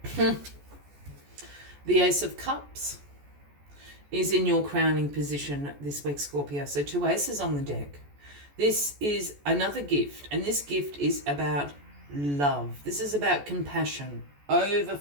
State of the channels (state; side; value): late; left; 14 ms